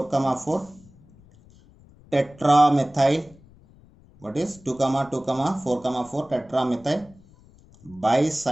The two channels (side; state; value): left; noise; rumble, 26 dB below the sound